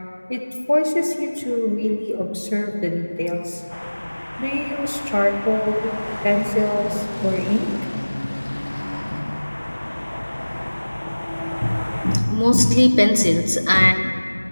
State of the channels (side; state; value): both; inverted; correlation -1.00